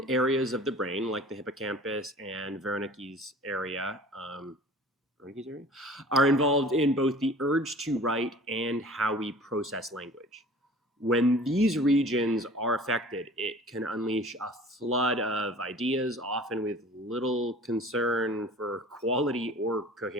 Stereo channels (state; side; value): normal; both; correlation 0.45